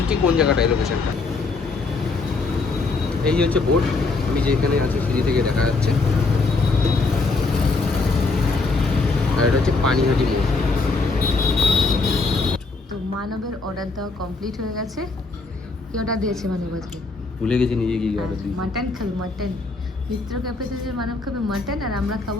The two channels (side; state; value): right; quieter; 3.8 dB